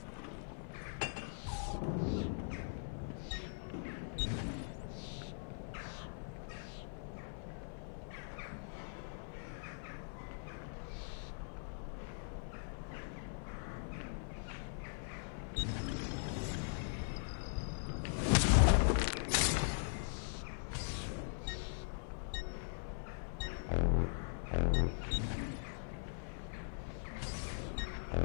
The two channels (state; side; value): silent; right; 50 dB below the other